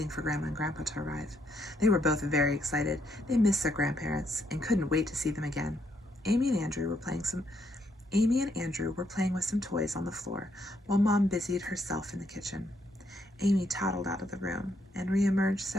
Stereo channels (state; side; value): normal; both; correlation 0.74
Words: for Grandma and Grandpa to arrive. They were both very excited. They missed their grandparents and couldn't wait to see them again. Amy and Andrew were playing with some toys on the floor while Mom busied herself in the kitchen. Amy toddled out of the room and reemerged